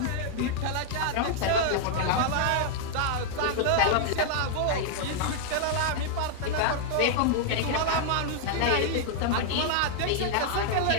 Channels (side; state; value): both; different; correlation -0.01